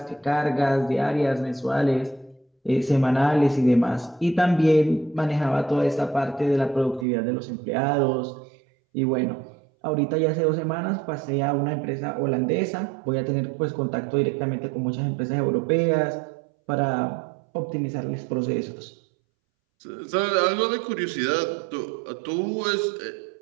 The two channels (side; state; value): left; drops out; at 7.1 s